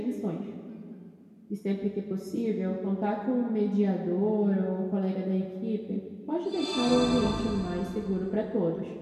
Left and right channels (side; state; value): both; identical; correlation 1.00